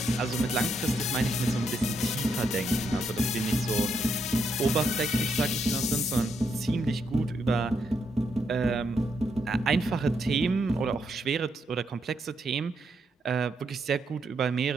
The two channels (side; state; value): both; normal; correlation 0.78